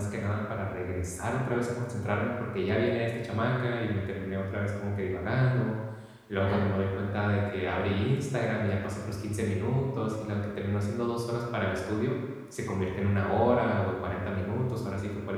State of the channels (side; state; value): both; identical; correlation 1.00